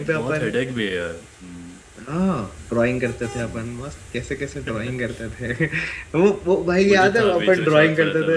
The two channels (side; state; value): both; identical; correlation 1.00